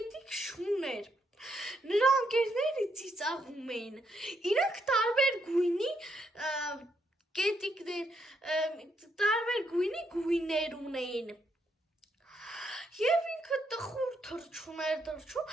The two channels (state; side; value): normal; both; correlation 0.77